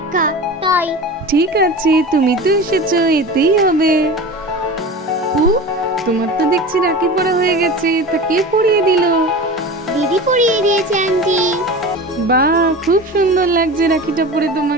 তাই। ঠিক আছে, তুমি তো এসেছো, এতেই হবে। তোমার তো দেখছি রাখি পরা হয়ে গেছে, তা কে পরিয়ে দিল? দিদি পরিয়ে দিয়েছে আন্টি। বাহ, খুব সুন্দর লাগছে রাখিটা পরে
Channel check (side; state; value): both; normal; correlation 0.32